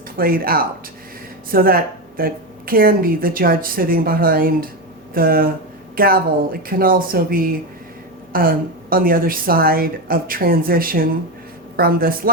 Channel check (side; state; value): both; normal; correlation 0.14